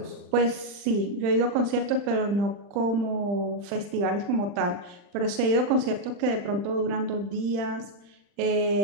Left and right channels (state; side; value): late; left; 40 ms